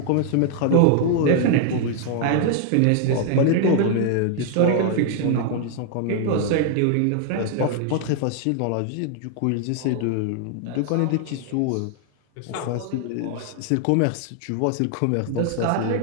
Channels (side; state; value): both; different; correlation 0.00